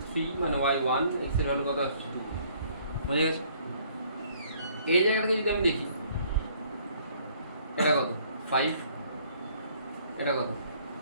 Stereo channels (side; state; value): both; inverted; correlation -0.61